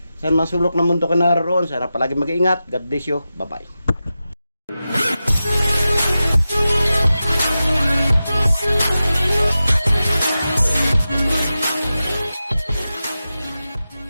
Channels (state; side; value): inverted; both; correlation -0.93